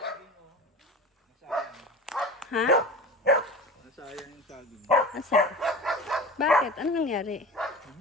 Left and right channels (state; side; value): normal; both; correlation 0.34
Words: Ha? Nasayang yung saging. Asa? Bakit? Ano nangyari?